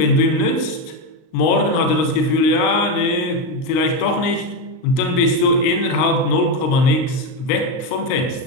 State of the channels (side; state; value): right; late; 38 ms